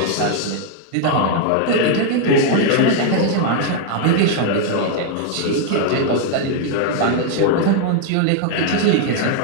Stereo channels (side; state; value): both; different; correlation 0.00